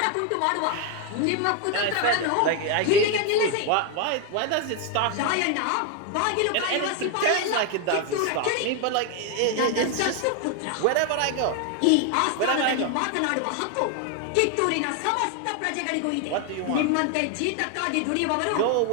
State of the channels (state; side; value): different; both; correlation 0.01